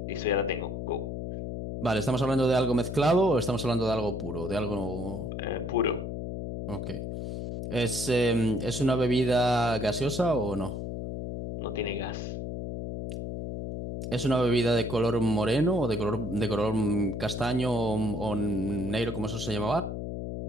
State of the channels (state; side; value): noise; left; hum, 5 dB below the sound